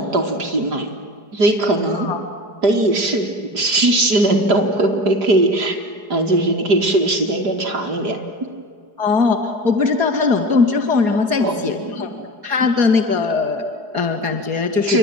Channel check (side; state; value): left; late; 4.8 ms